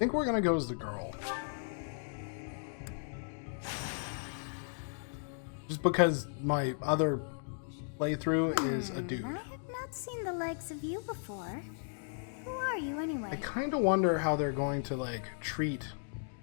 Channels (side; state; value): right; silent; digital silence